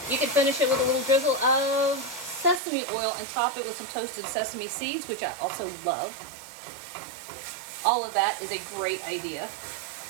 you could finish it with a little drizzle of sesame oil and top it with some toasted sesame seeds, which I also love. All of that is a great idea.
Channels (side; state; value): left; drops out; at 2.6 s